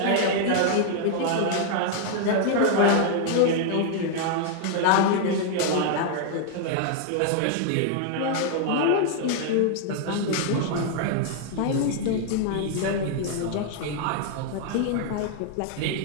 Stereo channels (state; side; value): different; both; correlation 0.00